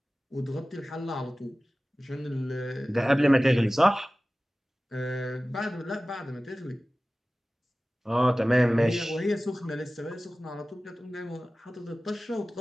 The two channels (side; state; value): both; normal; correlation 0.97